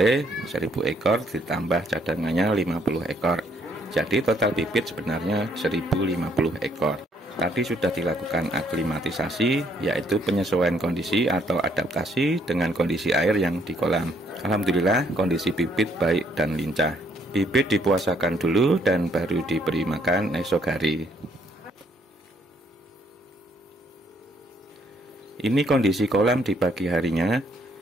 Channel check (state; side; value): normal; both; correlation 0.68